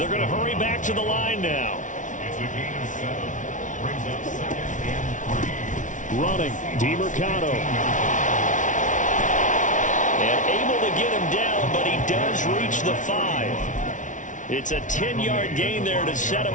going to hurry back to the line now. It's a gain of 7. Brings up 2nd and 3. Running, DiMercato. And able to get him down, but he does reach the 5. It's a 10-yard gain there to set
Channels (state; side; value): late; right; 0.37 ms